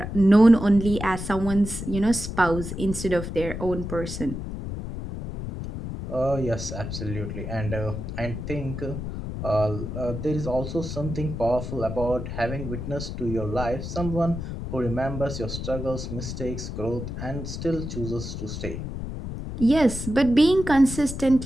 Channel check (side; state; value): left; noise; rumble, 6 dB below the sound